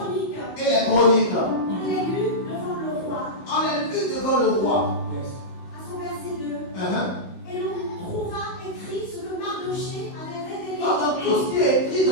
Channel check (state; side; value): late; right; 16 ms